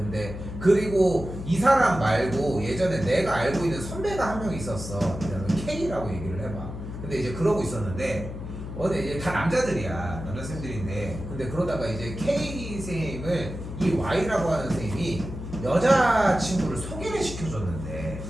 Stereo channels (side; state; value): left; noise; hum, 9 dB below the sound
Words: 그리고 이 사람 말고 예전에 내가 알고 있는 선배가 한 명 있었어. K라고 얘기를 해봐. 근데 이제 그러고 있었는데 근데 이제 다 남자들이야. 남자쌤들인데 근데 그러다가 이제 K 선생님을 이 Y라고 하는 선생님이 여자친구를 소개를 시켜줬는데